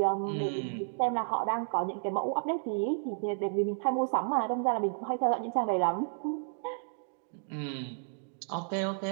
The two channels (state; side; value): silent; left; digital silence